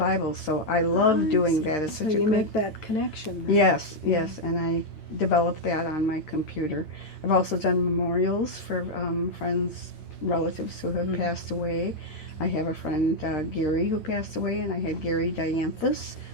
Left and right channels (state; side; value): late; right; 9.0 ms